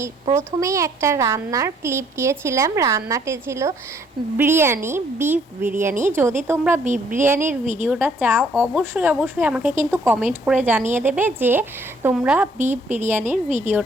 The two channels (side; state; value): both; normal; correlation 0.64